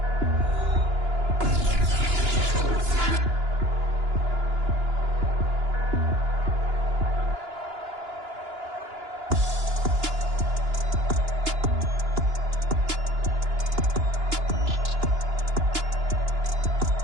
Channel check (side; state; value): left; late; 2.9 ms